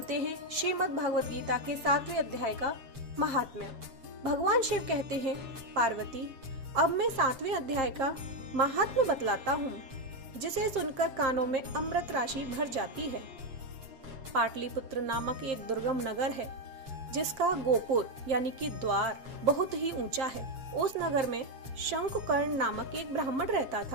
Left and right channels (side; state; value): left; late; 7.5 ms